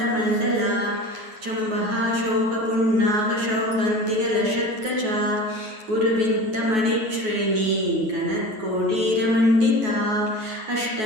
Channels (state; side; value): late; left; 9.3 ms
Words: चम्बः शोकपुण्णाकशौकन्तिकलशत्कचा गुरुविन्तमणिश्रेणी गणत्कोटीरमण्डिता